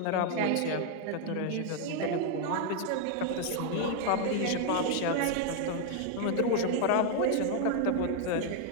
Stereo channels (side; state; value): both; different; correlation 0.00